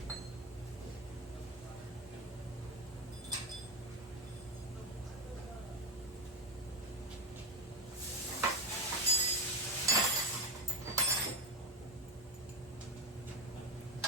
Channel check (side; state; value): both; normal; correlation 0.14